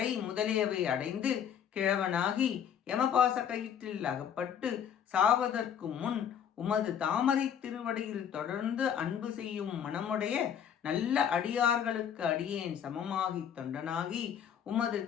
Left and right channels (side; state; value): right; quieter; 8.6 dB